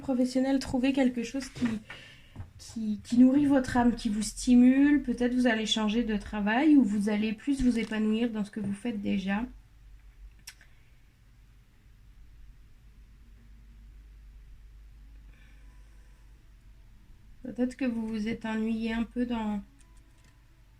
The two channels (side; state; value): both; identical; correlation 1.00